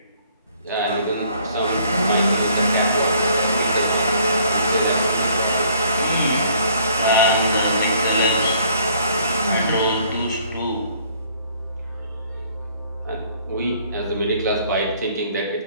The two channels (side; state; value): both; inverted; correlation -0.61